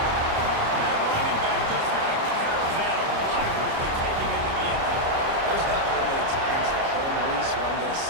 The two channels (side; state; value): left; late; 29 ms